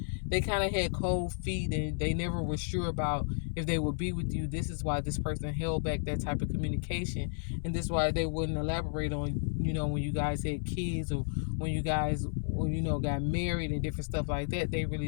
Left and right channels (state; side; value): silent; right; 56 dB below the other